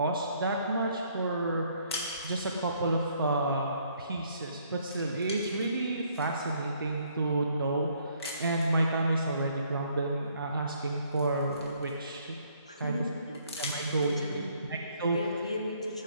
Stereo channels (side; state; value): both; inverted; correlation -0.66